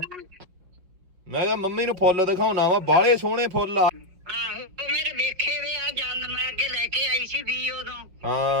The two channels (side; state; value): left; late; 5.5 ms